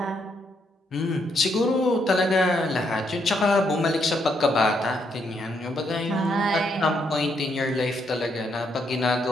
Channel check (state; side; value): normal; both; correlation 0.75